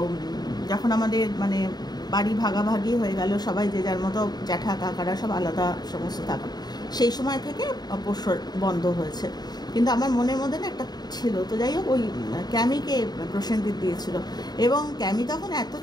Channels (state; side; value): late; right; 0.20 ms